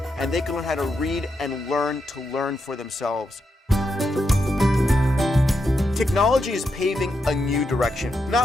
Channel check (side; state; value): both; normal; correlation 0.84